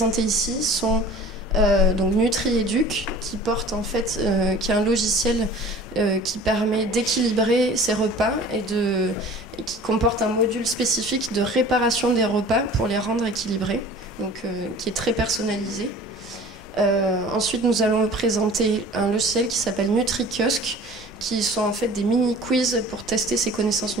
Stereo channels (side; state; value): both; normal; correlation 0.44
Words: ici sont donc NutriEduc, qui porte en fait, qui est un logiciel qui permet d'équilibrer ses repas et qui comporte un module spécifique de réparation des repas pour les rendre équilibrés, donc qui est très personnalisé. Ensuite, nous allons vous présenter un logiciel qui s'appelle NutriKiosque, qui sont en fait des mini-quiz pour tester ses connaissances